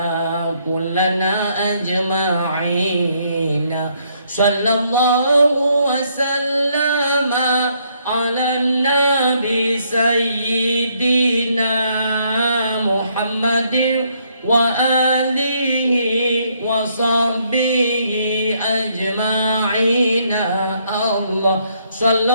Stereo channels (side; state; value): both; inverted; correlation -0.71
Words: كلنا أجمعين. صلى الله وسلم على النبي سيدنا محمد وآله وصحبه أجمعين. الله